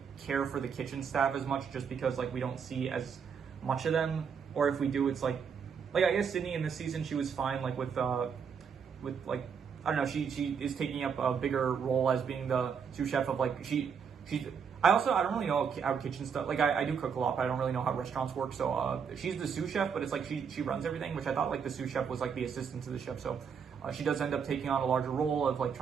care for the kitchen staff as much just because like we don't see as much of them, or if we do, it's like I guess Sydney in this season she was fine like with like I don't know, she is taking up a bigger role as being the sous chef of like she's I don't really know how kitchen stuff, like I do cook a lot, but I don't really know how restaurants work. So she's the sous chef, but it's like she runs everything, which I thought like the sous chef was like the assistant to the chef. So she does end up taking on a larger role of like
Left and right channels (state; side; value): quieter; left; 6.7 dB